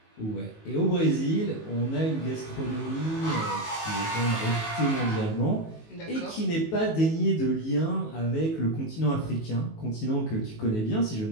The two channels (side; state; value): right; late; 19 ms